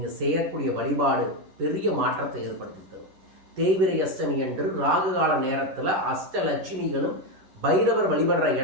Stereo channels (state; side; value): late; left; 11 ms